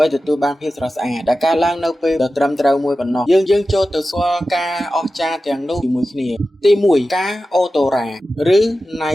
បីទទួលបានភាពស្រស់ស្អាតដែលកើតឡើងនៅពេលដ៏ត្រឹមត្រូវមួយប៉ុណ្ណោះយើងចូលទៅស្គាល់ការអស្ចារ្យទាំងនោះជាមួយគ្នាទី1ផ្កាអូតូរ៉ាឬ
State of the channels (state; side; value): normal; both; correlation 0.93